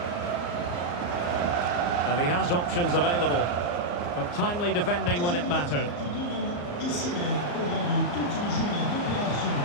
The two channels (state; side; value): late; right; 34 ms